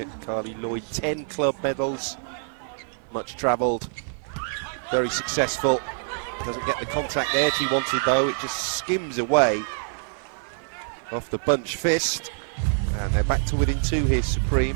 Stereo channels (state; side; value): silent; left; 61 dB below the other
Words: Carly Lloyd, 10 club medals, much travelled, very successful. Doesn't get the contact there she wanted though, it just skims away off the bunch fist. And they're back to within 2 here, Supreme.